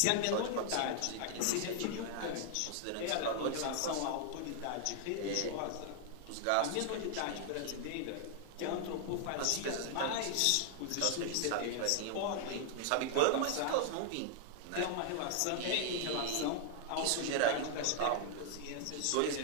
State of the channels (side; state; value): both; different; correlation 0.00